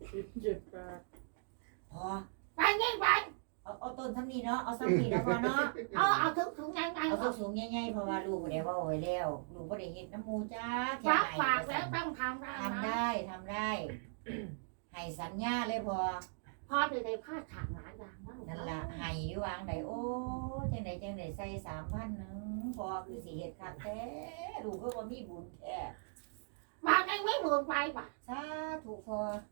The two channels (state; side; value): silent; left; digital silence